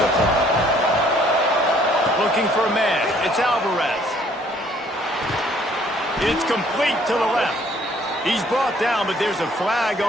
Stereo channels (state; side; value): normal; both; correlation 0.61